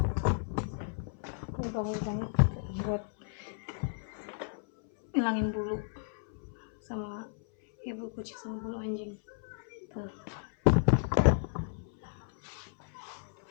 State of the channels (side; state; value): right; silent; 55 dB below the other